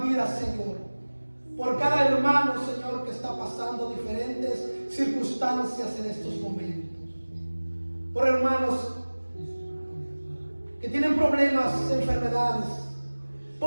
vida, Señor, por cada hermano, Señor, que está pasando diferentes circunstancias en estos momentos, por hermanos que tienen problemas, enfermedades,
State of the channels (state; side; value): inverted; both; correlation -1.00